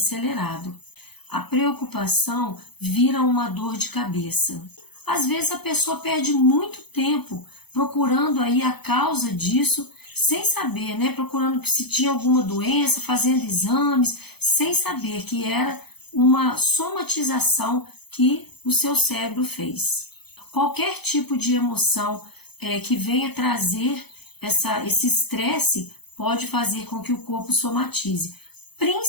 A preocupação vira uma dor de cabeça. Às vezes a pessoa perde muito tempo procurando aí a causa disso, sem saber, né? Procurando se tinha alguma doença, fazendo exames, sem saber que era uma somatização que o seu cérebro fez. Qualquer tipo de emoção que venha trazer esse estresse pode fazer com que o corpo somatize,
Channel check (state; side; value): late; right; 0.98 ms